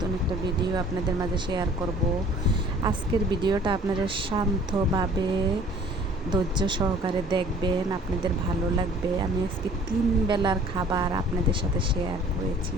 একটা ভিডিও আপনাদের মাঝে শেয়ার করব। আজকের ভিডিওটা আপনারা শান্তভাবে ধৈর্য সহকারে দেখবেন, আপনাদের ভালো লাগবে। আমি আজকে 3 বেলার খাবার আপনাদের সাথে শেয়ার করেছি।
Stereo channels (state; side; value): normal; both; correlation 0.53